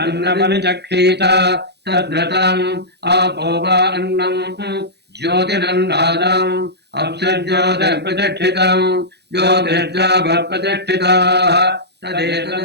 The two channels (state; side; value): late; left; 0.49 ms